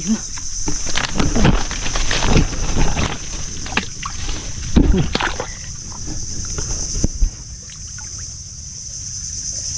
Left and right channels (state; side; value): identical; both; correlation 1.00